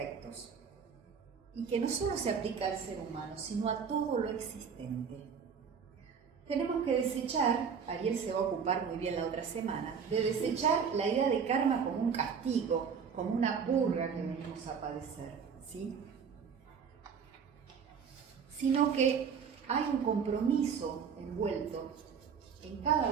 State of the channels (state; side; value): quieter; left; 6.6 dB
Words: y que no solo se aplica al ser humano, sino a todo lo existente. Tenemos que desechar, Ariel se va a ocupar muy bien la otra semana, de desechar la idea de karma como un castigo, como una purga que venimos a padecer, ¿sí? Sino que hay un compromiso envuelto en